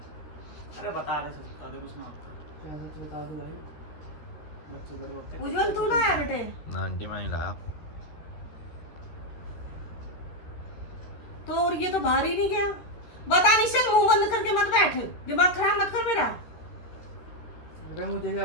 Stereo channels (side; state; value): right; late; 13 ms